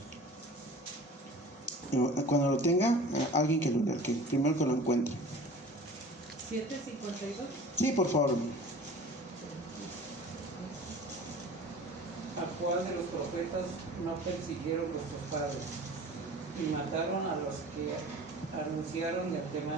Cuando lo tenga, alguien que lo lea, que primero que lo encuentre. 7:52. Sí, por favor. ¿A cuál de los profetas no persiguieron vuestros padres y mataron a los que anunciaron de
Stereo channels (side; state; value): both; normal; correlation 0.42